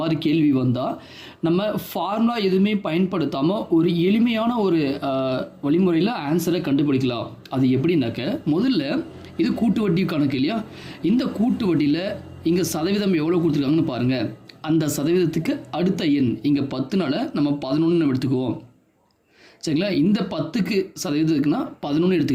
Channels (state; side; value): identical; both; correlation 1.00